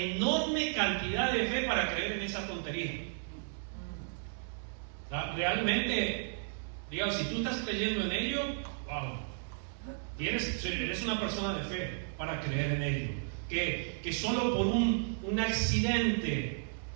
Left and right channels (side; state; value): left; silent; digital silence